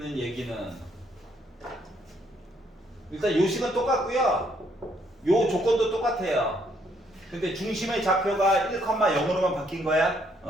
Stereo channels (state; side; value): normal; both; correlation 0.70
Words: 얘기는 일단 요 식은 똑같고요. 요 조건도 똑같아요. 근데 중심의 좌표가 1,0으로만 바뀐 거야.